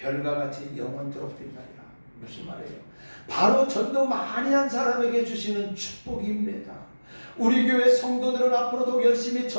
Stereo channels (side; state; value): both; inverted; correlation -1.00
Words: 같이 영원토록 빛나리라. 무슨 말이에요? 바로 전도 많이 한 사람에게 주시는 축복입니다. 우리 교회 성도들은 앞으로도 열심히